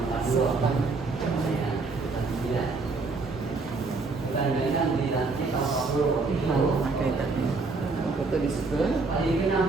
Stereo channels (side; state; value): left; quieter; 3.9 dB